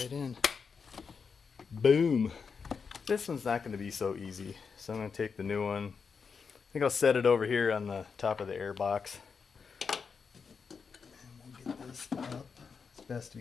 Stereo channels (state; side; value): quieter; right; 5.6 dB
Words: in. Boom. This one's not going to be so easy, so I'm going to take the new one. I think I'll set it over here on the top of the air box. And we'll get this up as best